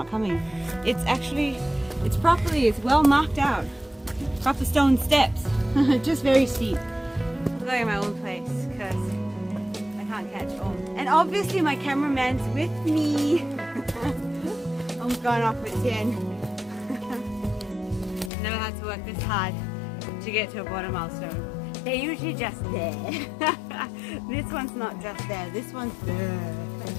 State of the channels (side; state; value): right; drops out; at 18.3 s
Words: coming. It's actually, it's well marked out. Proper stone steps. Just very steep. I'm going my own place because I can't catch Om. And obviously my cameraman's with me. Om's going off with Tien. Never had to work this hard to get to a border milestone. They're usually just there. This one's not just there, this one's there.